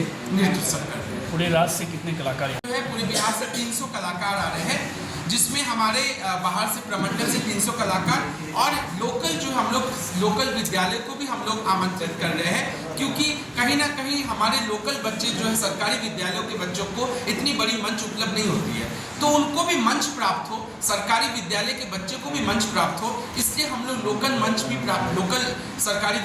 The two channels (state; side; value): identical; both; correlation 1.00